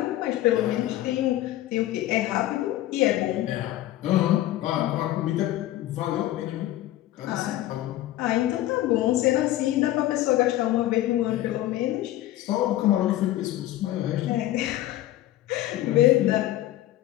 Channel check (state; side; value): quieter; right; 14.6 dB